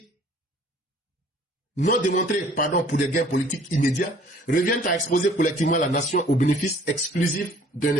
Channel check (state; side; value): normal; both; correlation 0.55